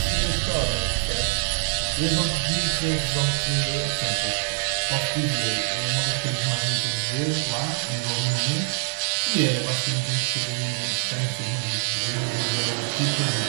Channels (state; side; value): silent; left; digital silence